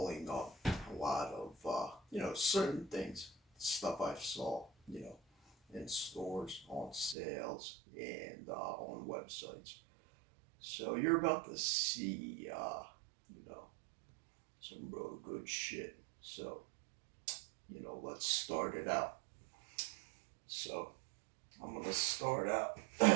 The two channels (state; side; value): drops out; left; at 7.2 s